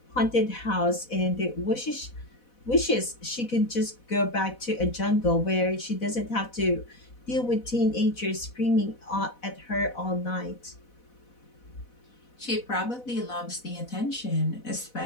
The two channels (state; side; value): late; right; 4.1 ms